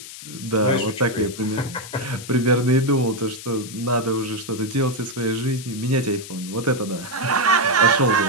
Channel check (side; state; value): left; noise; hiss, 13 dB below the sound